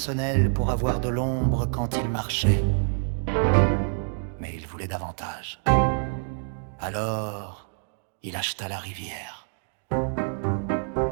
pour avoir de l'ombre quand il marchait. Mais il voulait davantage. Alors, il acheta la rivière.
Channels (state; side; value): silent; left; digital silence